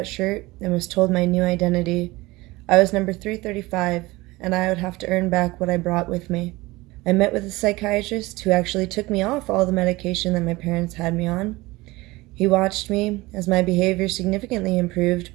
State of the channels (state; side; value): quieter; left; 20.7 dB